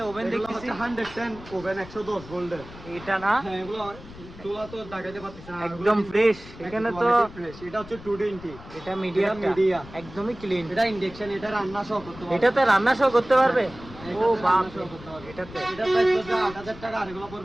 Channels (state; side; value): noise; left; rumble, 17 dB below the sound